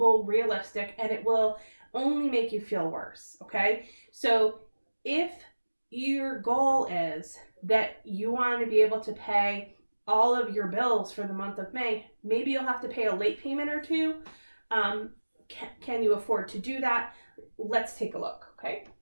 realistic, and it will only make you feel worse, okay? So if your goal is that you want to be able to pay all of your bills for the month of May, maybe you'll have to pay a late payment or two. Can you afford to do that? Let's take a look, okay?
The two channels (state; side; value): inverted; both; correlation -1.00